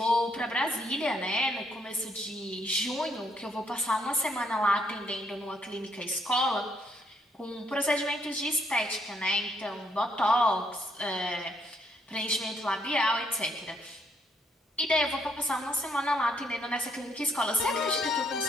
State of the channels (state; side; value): normal; both; correlation 0.72